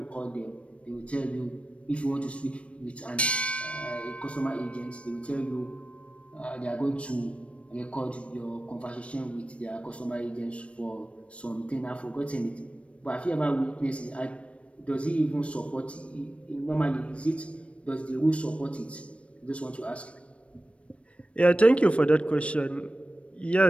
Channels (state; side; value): late; right; 0.061 ms